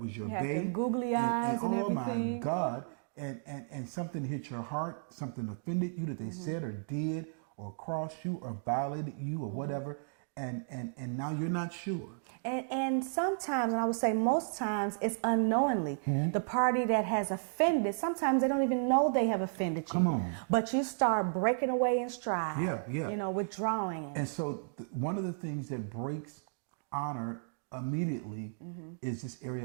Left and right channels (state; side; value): silent; left; digital silence